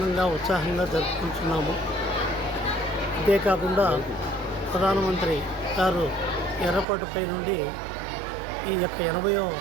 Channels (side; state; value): left; drops out; at 6.9 s